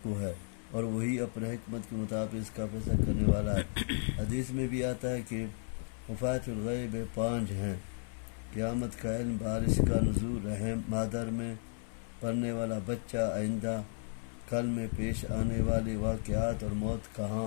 کو ہے، اور وہی اپنے حکمت کے مطابق اس کا فیصلہ کرنے والا ہے. حدیث میں بھی آتا ہے کہ مفاتیح الغیب 5 ہیں: قیامت کا علم، بارش کا نزول، رحم مادر میں پڑنے والا بچہ، آئندہ کل میں پیش آنے والے واقعات، اور موت کہاں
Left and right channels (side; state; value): right; silent; 55 dB below the other